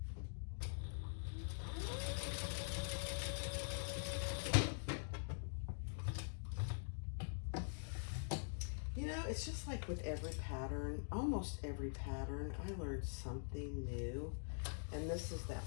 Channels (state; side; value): silent; right; digital silence